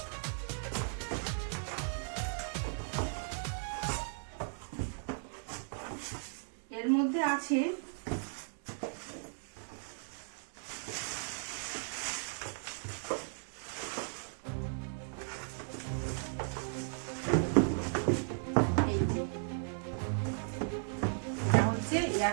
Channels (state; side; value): silent; left; digital silence